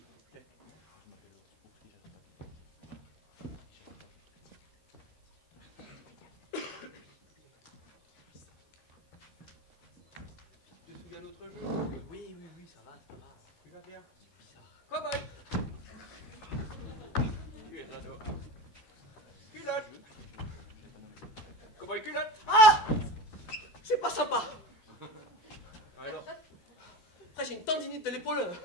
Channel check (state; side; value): late; right; 13 ms